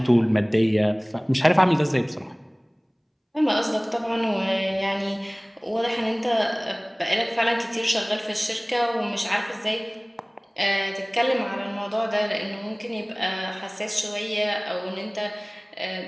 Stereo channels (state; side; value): identical; both; correlation 1.00